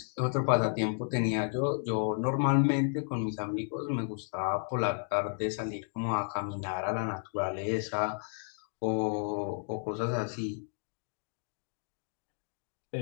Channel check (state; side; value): silent; right; 56 dB below the other